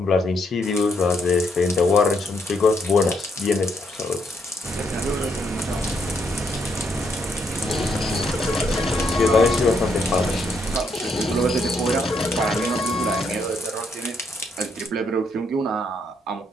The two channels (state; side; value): normal; both; correlation 0.75